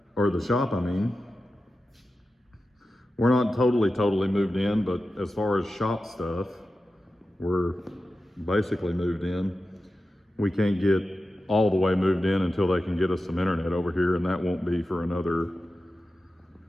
or the shop, I mean. We're not totally moved in, but as far as shop stuff, we're basically moved in. We can't get all the way moved in until they can get us some internet over here, and that won't be for another,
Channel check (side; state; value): both; normal; correlation 0.93